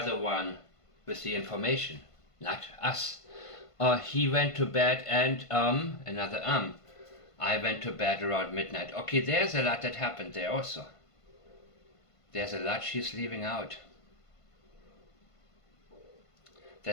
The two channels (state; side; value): late; right; 1.5 ms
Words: the one with the information, not us. He went to bed and another I went to bed around midnight. Okay, there's a lot that happened there also. There's a lot she's leaving out.